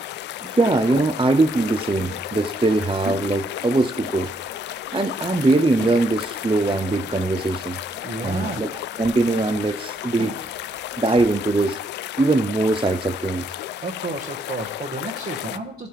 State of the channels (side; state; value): both; normal; correlation 0.73